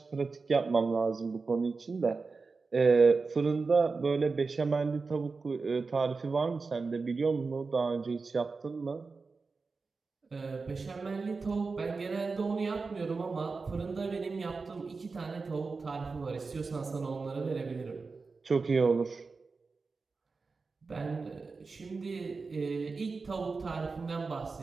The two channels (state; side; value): quieter; left; 4.3 dB